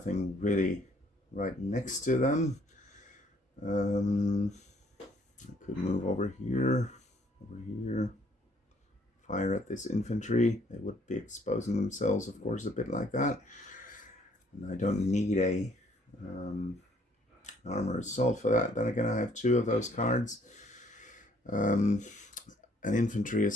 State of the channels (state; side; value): normal; both; correlation 0.63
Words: really right next to them. I could move over here, fire at this infantry. They would be exposing themselves, of course, a bit like that. And I don't need a armor assault for that. Then again, I have two of those cards. An infantry